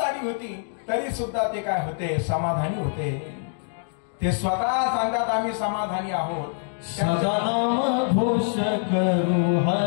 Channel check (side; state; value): right; silent; digital silence